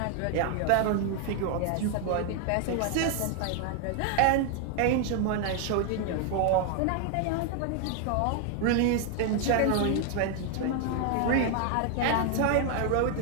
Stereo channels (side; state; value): both; different; correlation 0.00